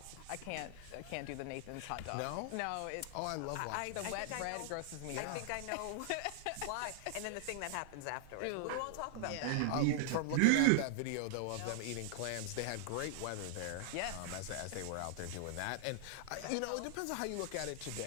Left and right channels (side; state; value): both; different; correlation 0.00